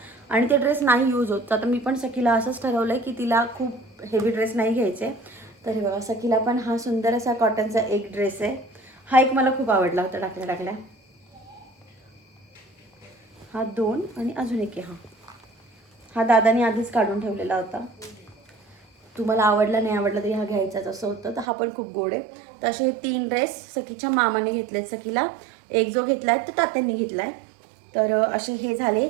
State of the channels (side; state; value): left; drops out; at 21.5 s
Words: आणि ते ड्रेस नाही यूज होत. आता मी पण सखीला असंच ठरवलंय की तिला खूप हेवी ड्रेस नाही घ्यायचे. तर हे बघा सखीला पण हा सुंदर असा कॉटनचा एक ड्रेस आहे. हा एक मला खूप आवडला होता टाकल्या. हा 2 आणि अजून एक आहे. हा दादाने आधीच काढून ठेवलेला होता. तुम्हाला आवडला नाही आवडला तरी हा घ्यायचाच असं होतं. तर हा पण खूप गोड आहे. तर असे 3 ड्रेस सखीच्या मामाने घेतलेत सखीला. एक जो घेतला आहे तो तात्यांनी घेतला आहे. तर असे हे झाले